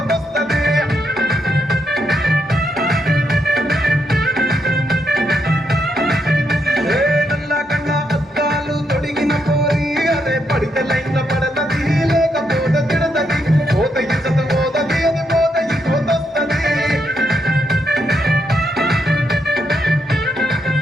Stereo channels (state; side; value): normal; both; correlation 0.79